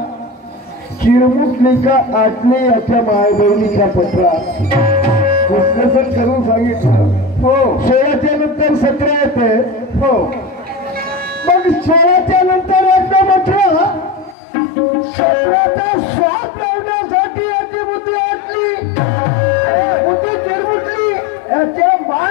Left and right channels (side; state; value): right; drops out; at 14.4 s